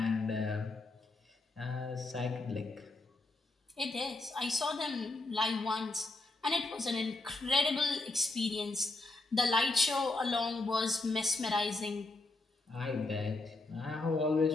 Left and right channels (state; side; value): quieter; right; 3.1 dB